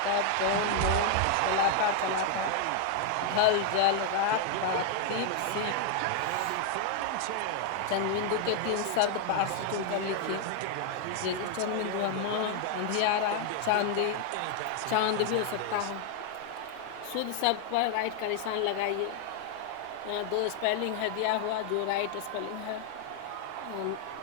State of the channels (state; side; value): different; both; correlation 0.00